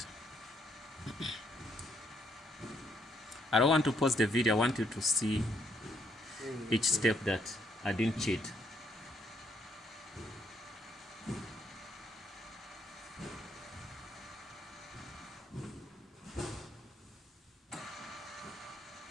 I don't want to pause the video. I want you to see each step that I didn't cheat.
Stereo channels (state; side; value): normal; both; correlation 0.71